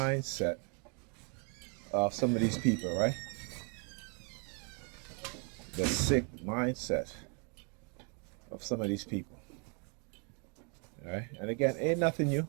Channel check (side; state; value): left; quieter; 37.4 dB